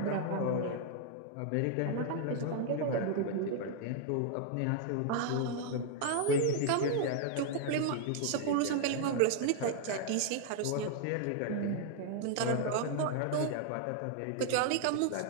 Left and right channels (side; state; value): both; different; correlation 0.00